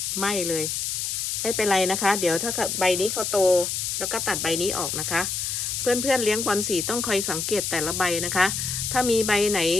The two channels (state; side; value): noise; left; hiss, 2 dB below the sound